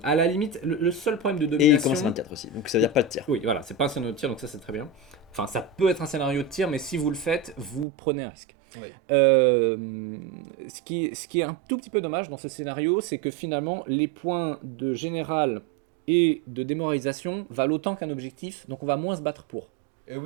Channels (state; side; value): drops out; left; at 7.9 s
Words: À la limite, le seul problème de Et il domination. commence à 24 aussi, donc ça veut dire pas de tir. Oui, voilà, c'est pas un scénario de tir, donc ça c'est très bien. Enfin, ça peut être un scénario de tir, mais si vous le faites, vous prenez un risque. Oui. Ce qui est un tout petit peu dommage dans ce scénario, c'est que finalement, les points de général et de démoralisation valent autant qu'un objectif, donc on va moins se battre pour.